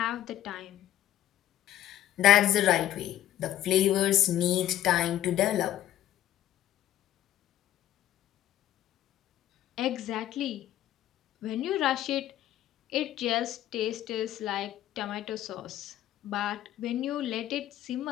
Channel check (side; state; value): right; quieter; 12.8 dB